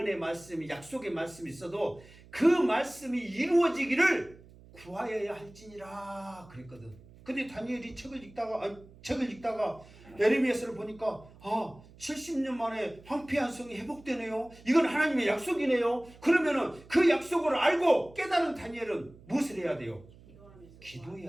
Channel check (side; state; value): right; noise; hum, 22 dB below the sound